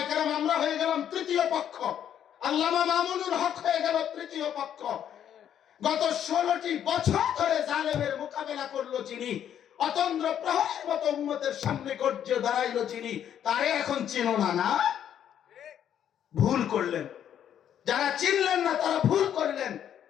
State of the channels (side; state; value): right; quieter; 9.8 dB